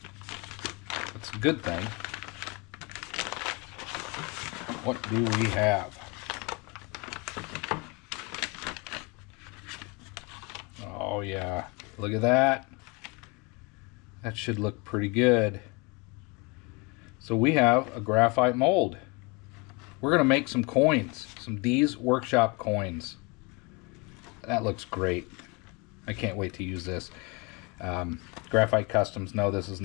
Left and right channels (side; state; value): right; quieter; 29.3 dB